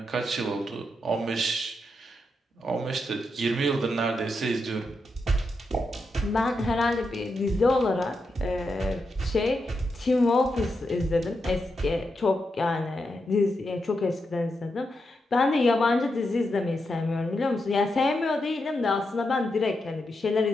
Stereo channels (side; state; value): both; normal; correlation 0.85